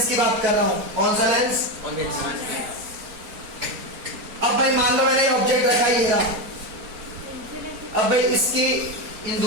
की बात कर रहा हूँ, कौन सा लेंस, अब भाई मान लो मैंने ऑब्जेक्ट रखा ही है, अब भाई इसकी इन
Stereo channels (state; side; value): late; left; 4.5 ms